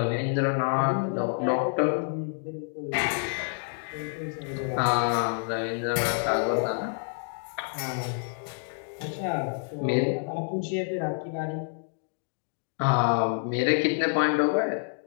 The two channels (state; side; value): silent; right; 59 dB below the other